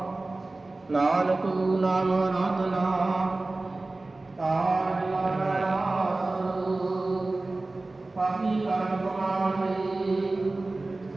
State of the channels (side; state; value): left; quieter; 3.1 dB